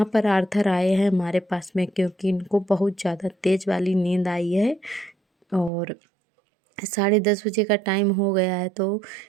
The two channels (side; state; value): left; drops out; at 5.7 s